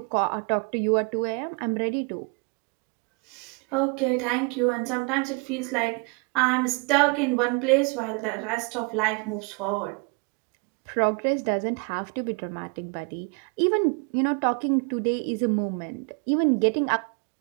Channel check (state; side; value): quieter; left; 32.0 dB